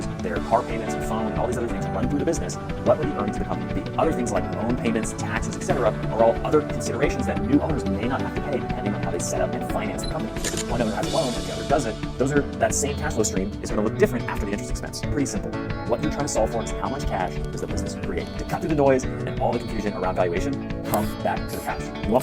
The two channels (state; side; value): identical; both; correlation 1.00